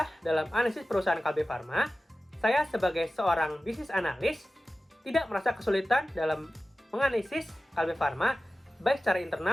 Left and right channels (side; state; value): both; normal; correlation 0.95